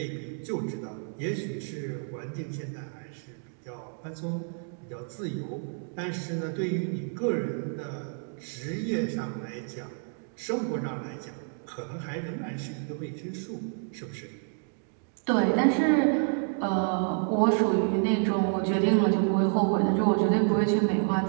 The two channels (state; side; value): silent; left; 58 dB below the other